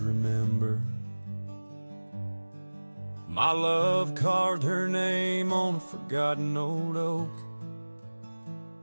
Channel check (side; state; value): both; inverted; correlation -1.00